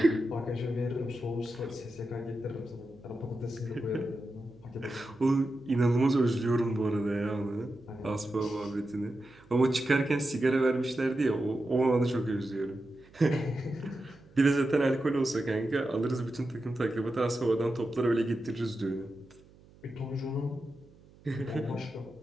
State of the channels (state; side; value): noise; right; hum, 25 dB below the sound